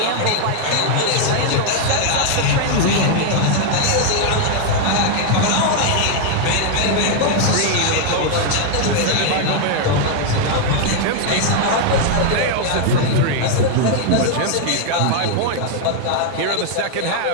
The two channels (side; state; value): both; different; correlation 0.00